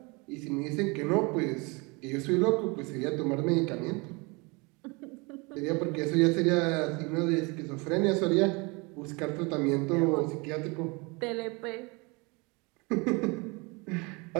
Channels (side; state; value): left; quieter; 28.1 dB